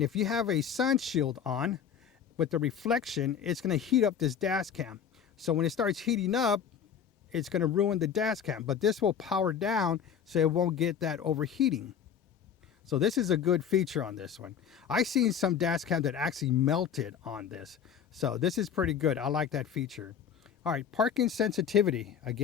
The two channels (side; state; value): right; quieter; 7.9 dB